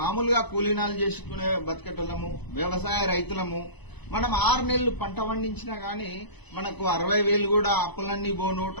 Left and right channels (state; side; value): late; right; 1.0 ms